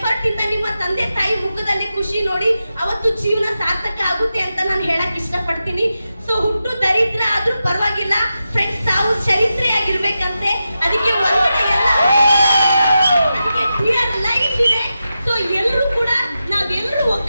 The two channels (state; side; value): inverted; both; correlation -0.90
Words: ಇಂದ ನಿಮ್ಮ ತಂದೆ ತಾಯಿ ಮುಖದಲ್ಲಿ ಖುಷಿ ನೋಡಿ ಅವತ್ತು ಜೀವನ ಸಾರ್ಥಕ ಆಗುತ್ತೆ ಅಂತ ನಾನು ಹೇಳಕ್ ಇಷ್ಟಪಡ್ತೀನಿ. ಸೊ ಹುಟ್ಟು ದರಿದ್ರ ಆದ್ರೂ ಪರವಾಗಿಲ್ಲ ಫ್ರೆಂಡ್ಸ್, ತಾವು ಚರಿತ್ರೆಯಾಗಿರ್ಬೇಕಂತೆ. ಅದಕ್ಕೆ ಒಳಗಡೆ ಎಲ್ಲ ಡಿಯರ್ ಲೈಫ್ ಇದೆ. ಸೊ ಎಲ್ಲರೂ ಕೂಡ ನಾವೆಲ್ಲರೂ